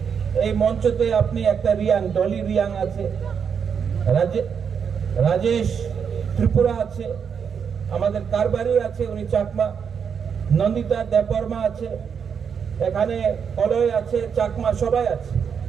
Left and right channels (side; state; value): left; quieter; 6.9 dB